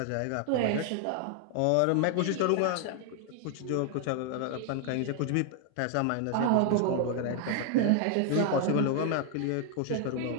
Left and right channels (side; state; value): both; different; correlation 0.00